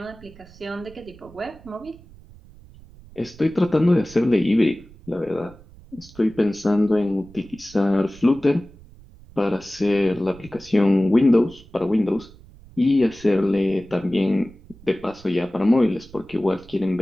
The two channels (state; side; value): noise; right; rumble, 22 dB below the sound